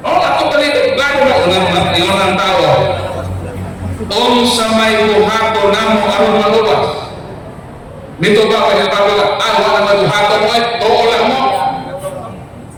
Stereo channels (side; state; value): both; identical; correlation 1.00